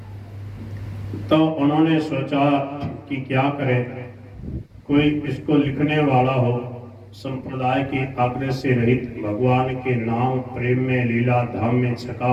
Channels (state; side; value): identical; both; correlation 1.00